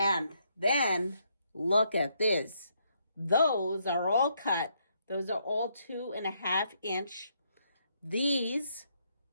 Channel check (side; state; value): both; inverted; correlation -0.74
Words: then look at this. Those are all cut. Those are all 2.5 inch. These